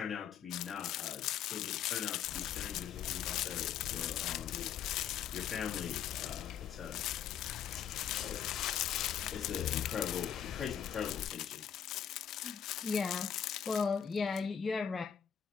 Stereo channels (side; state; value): right; quieter; 8.6 dB